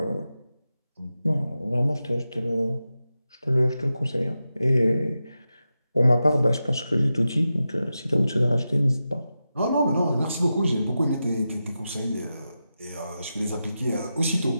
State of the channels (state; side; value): inverted; both; correlation -0.91